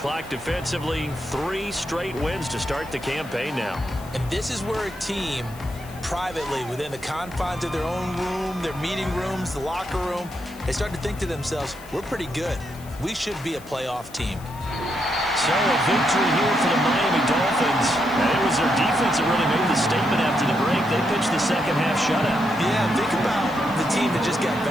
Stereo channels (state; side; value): noise; left; hiss, 21 dB below the sound